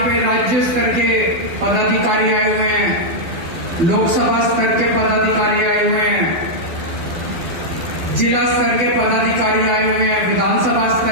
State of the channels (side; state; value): left; late; 12 ms